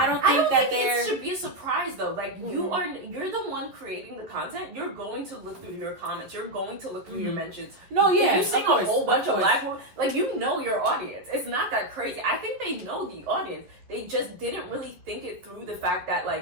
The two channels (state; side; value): late; left; 11 ms